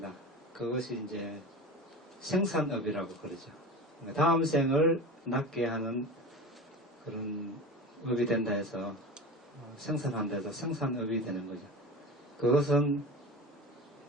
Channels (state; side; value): normal; both; correlation 0.31